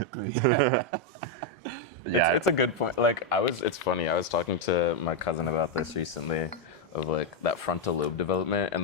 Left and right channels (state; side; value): normal; both; correlation 0.01